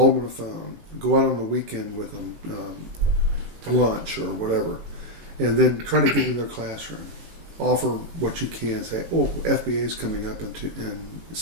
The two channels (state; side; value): late; left; 18 ms